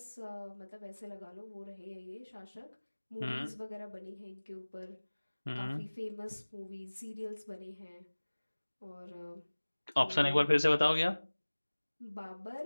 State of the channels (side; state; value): both; inverted; correlation -1.00